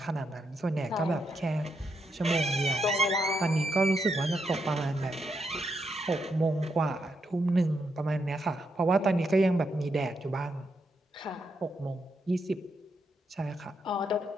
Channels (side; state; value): both; normal; correlation 0.81